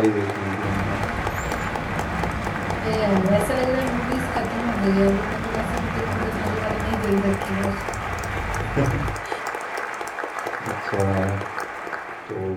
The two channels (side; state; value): both; identical; correlation 1.00